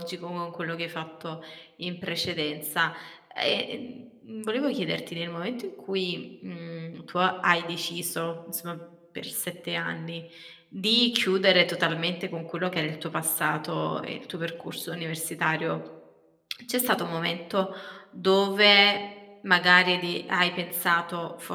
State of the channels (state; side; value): identical; both; correlation 1.00